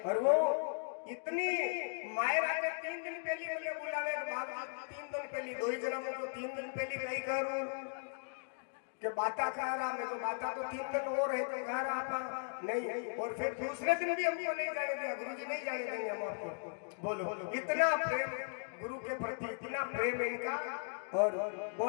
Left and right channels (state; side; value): silent; right; digital silence